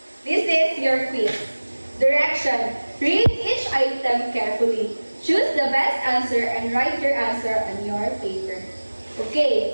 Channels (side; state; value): both; inverted; correlation -1.00